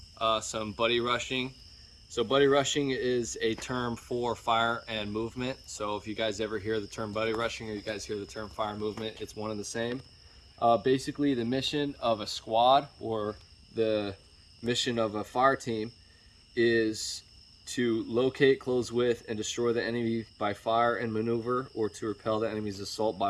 some buddy rushing. So buddy rushing is a term for fire and movement. So if you guys ever hear the term buddy rushing or you guys hear the term fire and movement, it's one and the same. Basically the mission of a squad or the mission of a fire team is to locate, close with, and destroy the enemy by fire and maneuver, or to repel the enemy's assault by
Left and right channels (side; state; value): both; identical; correlation 1.00